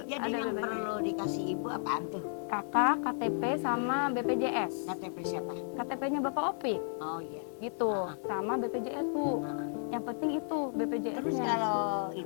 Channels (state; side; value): silent; right; digital silence